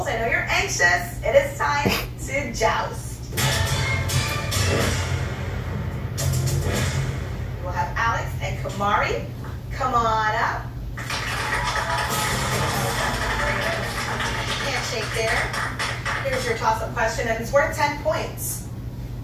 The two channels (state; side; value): identical; both; correlation 1.00